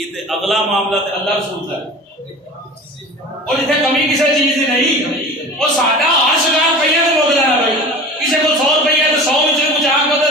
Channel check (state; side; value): normal; both; correlation 0.37